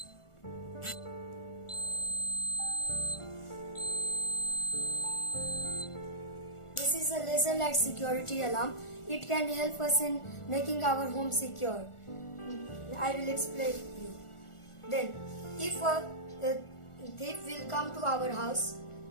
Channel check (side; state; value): right; late; 1.4 ms